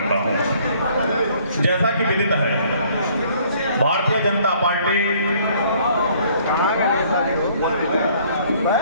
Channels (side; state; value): both; inverted; correlation -0.60